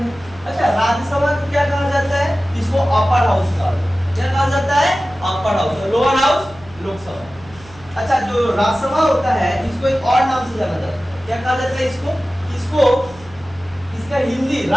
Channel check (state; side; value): noise; right; hum, 22 dB below the sound